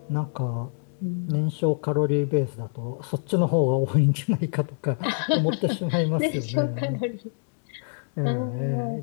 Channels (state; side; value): silent; right; digital silence